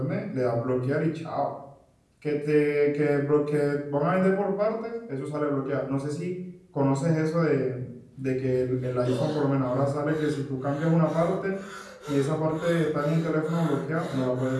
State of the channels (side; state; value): both; identical; correlation 1.00